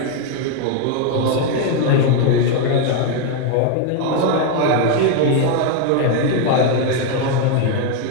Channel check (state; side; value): different; both; correlation 0.01